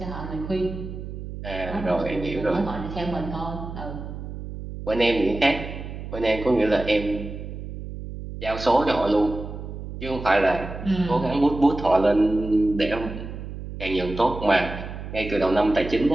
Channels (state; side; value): noise; right; hum, 9 dB below the sound